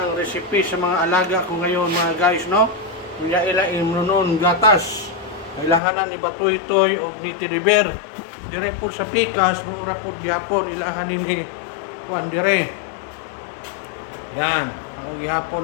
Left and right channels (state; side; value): drops out; right; at 5.8 s